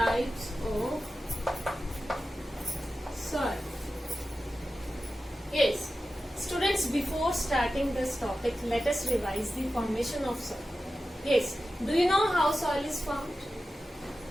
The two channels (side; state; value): both; normal; correlation 0.93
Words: of soil. Yes, students, before starting this topic, let us revise the formation of soil. Yes, do you know how soil is formed?